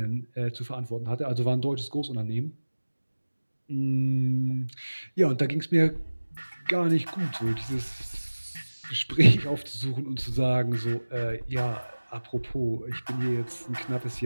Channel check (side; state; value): both; inverted; correlation -1.00